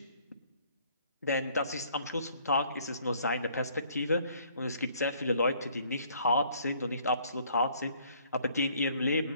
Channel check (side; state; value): both; inverted; correlation -0.61